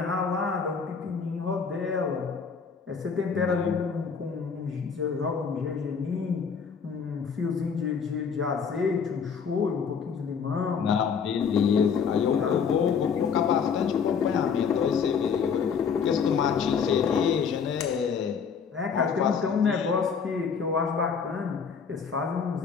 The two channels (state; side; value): quieter; right; 6.3 dB